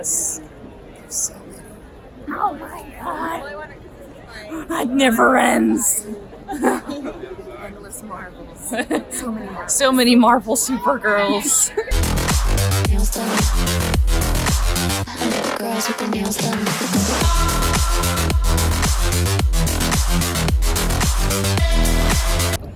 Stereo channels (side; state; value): both; identical; correlation 1.00